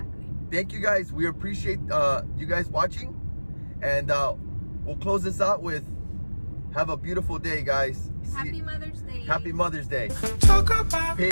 Thank you, guys. We appreciate you guys watching, and we'll close this out with have a beautiful day, guys. Happy Mother's Day. Happy Mother's Day. Talk about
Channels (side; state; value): both; inverted; correlation -1.00